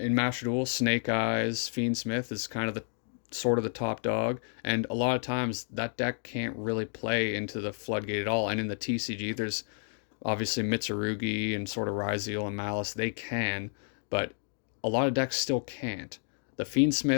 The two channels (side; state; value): right; silent; digital silence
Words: Master Duel, Snake Eyes, Fiendsmith is kind of the top dog, and a lot of times that deck can't really play into the floodgate at all. And in the TCG, there's obviously Mitsurugi and sort of Ryzeal and Malice, they can, but a lot of decks still can't. The